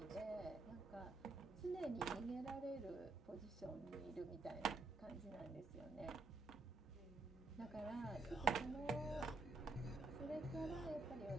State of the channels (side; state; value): left; quieter; 3.6 dB